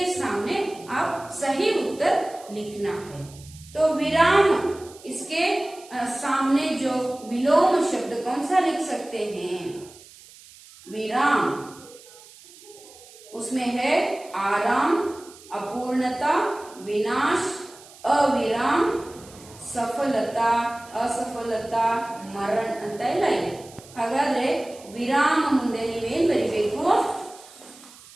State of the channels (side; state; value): right; noise; hiss, 21 dB below the sound